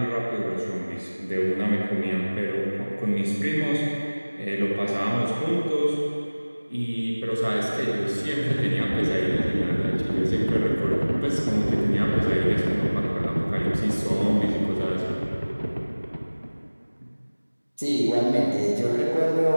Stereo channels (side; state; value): both; inverted; correlation -1.00